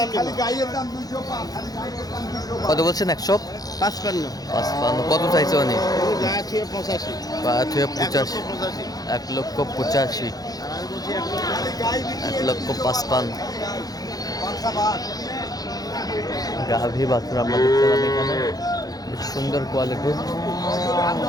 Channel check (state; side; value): late; right; 0.18 ms